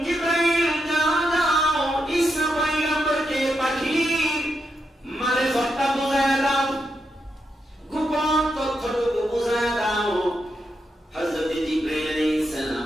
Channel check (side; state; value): both; normal; correlation 0.83